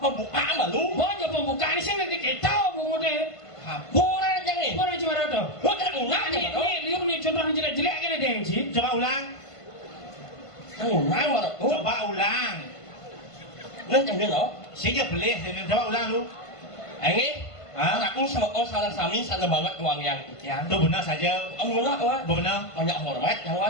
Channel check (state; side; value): late; right; 1.5 ms